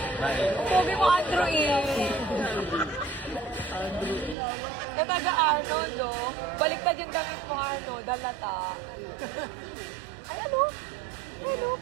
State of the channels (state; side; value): drops out; left; at 4.4 s